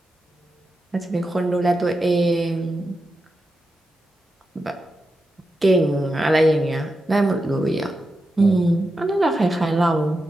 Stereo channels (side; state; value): both; normal; correlation 0.88